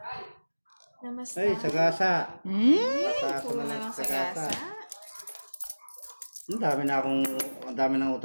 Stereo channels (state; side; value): inverted; both; correlation -1.00